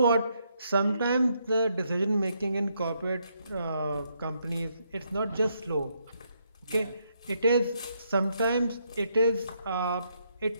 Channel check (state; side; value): inverted; both; correlation -0.75